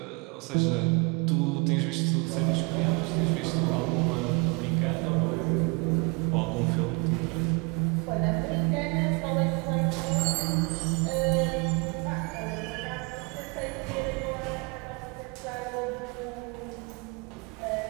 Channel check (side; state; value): left; quieter; 30.5 dB